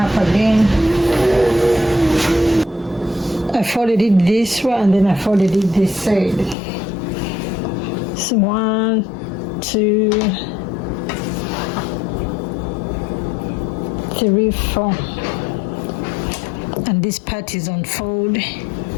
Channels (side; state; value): right; drops out; at 6.6 s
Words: again. I folded it this way and then I folded it this side. So 1, 2, 3, 4. And this part is on fold.